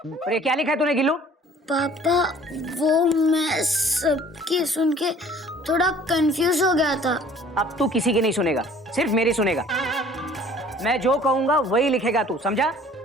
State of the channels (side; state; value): both; normal; correlation 0.53